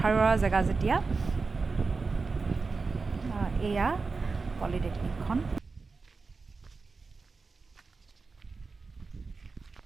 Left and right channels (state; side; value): quieter; left; 4.2 dB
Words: জেগা যেতিয়া। এয়া পলিটেকনিকখন।